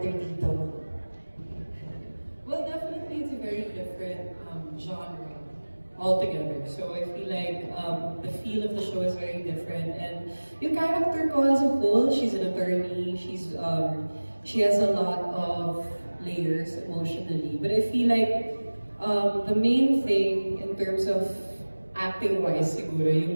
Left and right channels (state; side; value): inverted; both; correlation -1.00